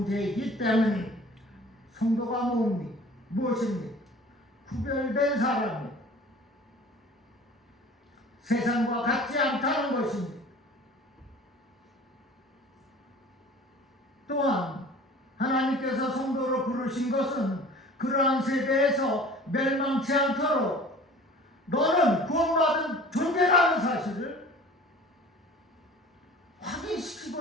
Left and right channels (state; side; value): normal; both; correlation 0.45